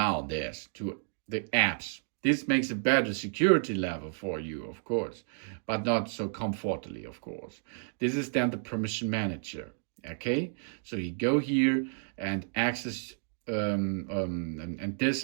this to the apps. This makes a better security level for you, of course, but not so comfortably, of course. This is then the permission manager, okay? So you go here and access and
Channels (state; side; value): silent; left; digital silence